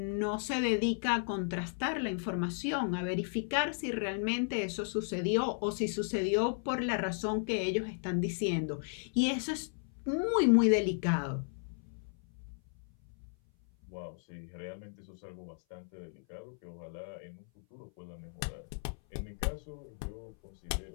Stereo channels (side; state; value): right; silent; 55 dB below the other